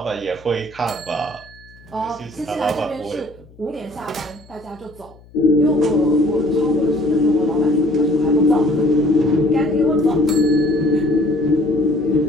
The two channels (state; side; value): noise; left; hum, 25 dB below the sound